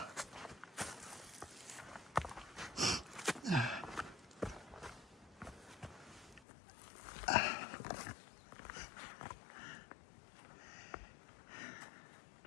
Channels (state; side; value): drops out; right; at 6.4 s